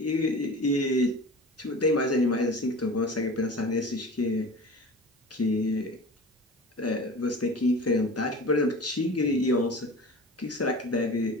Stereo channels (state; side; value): normal; both; correlation 0.37